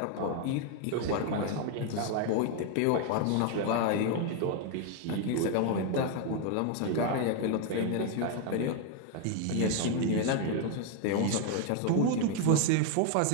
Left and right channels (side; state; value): both; different; correlation 0.01